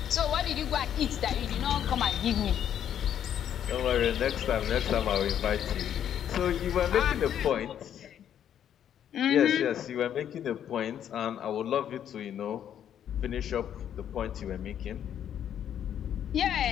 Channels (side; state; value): right; quieter; 9.7 dB